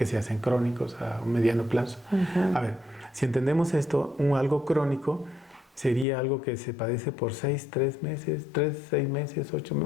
se hacen crónicos a un mediano plazo. Ujú. A ver, si entendemos esto, algo crónico sería algo que se padece por 6 meses, 6 meses, 8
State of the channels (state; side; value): drops out; right; at 6.1 s